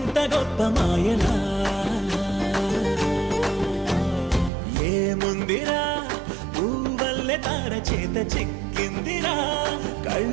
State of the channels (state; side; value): drops out; left; at 4.5 s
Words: గొప్ప మాయలా ఏముందిరా నువ్వల్లే తార చేత చిక్కిందిరా